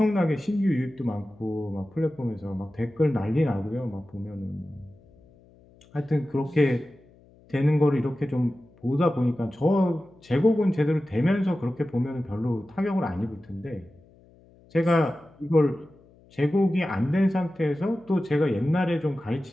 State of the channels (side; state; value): left; noise; hum, 27 dB below the sound